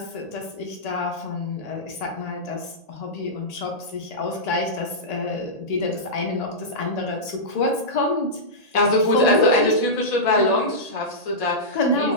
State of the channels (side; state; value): right; late; 1.8 ms